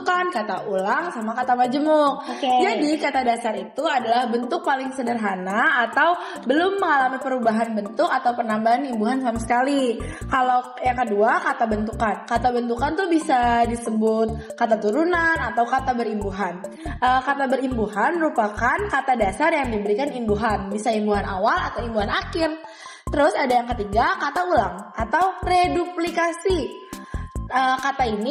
kata ulang, sama kata majemuk. Oke. Jadi, kata dasar itu adalah bentuk paling sederhana atau belum mengalami perubahan bentuk atau penambahan imbuhan sama sekali. Kalau yang kedua, kata bentukan. Kata bentukan tuh bisa disebut kata turunan atau kata berimbuhan. Kata berimbuhan merupakan kata dasar yang diberikan imbuhan. Bisa imbuhan awal atau imbuhan akhir. Terus ada yang ketiga, kata ulang atau reduplikasi. Kata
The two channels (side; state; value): both; identical; correlation 1.00